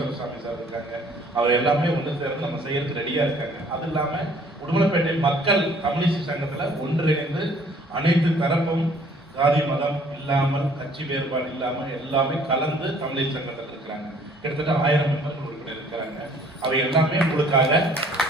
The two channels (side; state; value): both; normal; correlation 0.57